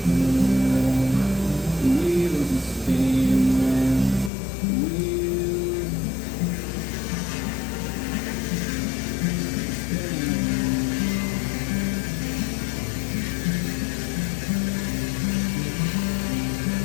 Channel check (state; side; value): drops out; right; at 4.3 s